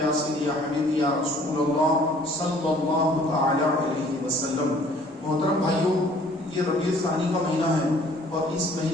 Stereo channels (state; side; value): normal; both; correlation 0.56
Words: یا سیدی یا حبیبی یا رسول اللہ صلی اللہ تعالی علیہ وسلم۔ محترم بھائیوں، یہ ربیع الثانی کا مہینہ ہے اور اس